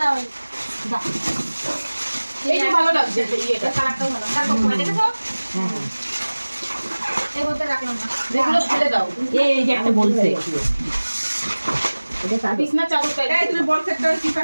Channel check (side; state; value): both; inverted; correlation -1.00